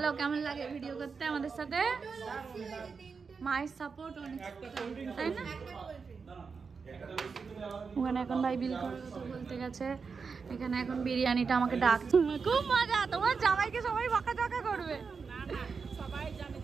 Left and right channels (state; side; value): quieter; left; 5.3 dB